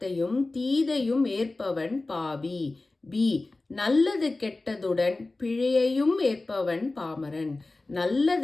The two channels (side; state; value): right; quieter; 3.2 dB